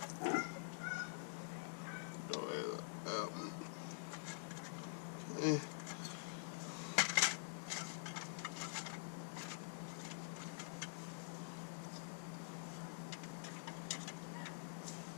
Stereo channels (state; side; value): silent; right; digital silence